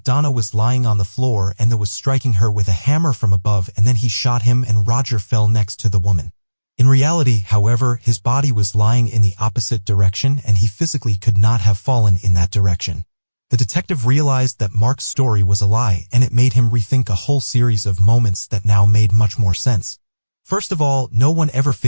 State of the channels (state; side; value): inverted; both; correlation -1.00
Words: Donna was lying on the floor and that was striking her with a hammer from above, and then he shot him and Roger fell next to the woman. In reality, however, his body was lying in the opposite direction and he physically could not have fallen in that direction. The detective realized that Mark's story was a lie, and it made him rethink a whole series of moments that now made much more sense. First of all, no one ever